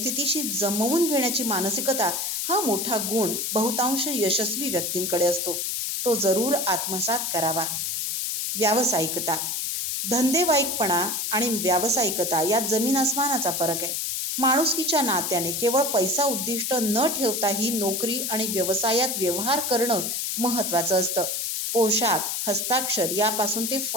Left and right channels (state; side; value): noise; left; hiss, 1 dB below the sound